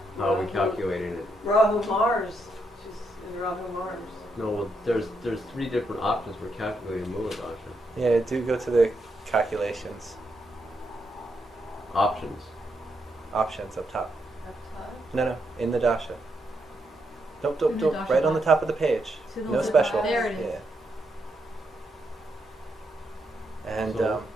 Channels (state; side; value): normal; both; correlation 0.80